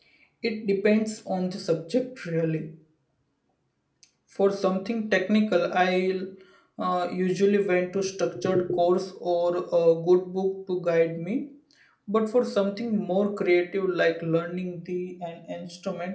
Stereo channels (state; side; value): identical; both; correlation 1.00